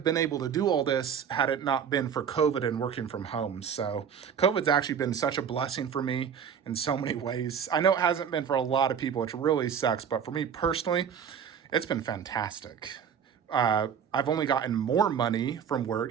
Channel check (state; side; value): quieter; left; 7.6 dB